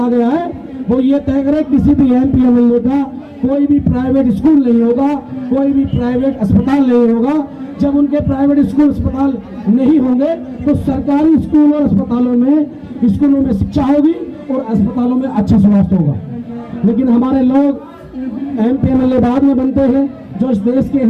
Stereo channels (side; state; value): both; identical; correlation 1.00